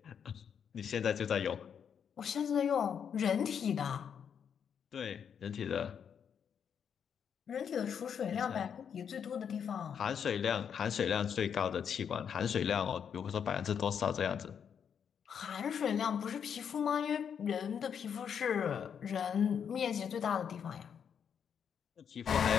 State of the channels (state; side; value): quieter; right; 7.7 dB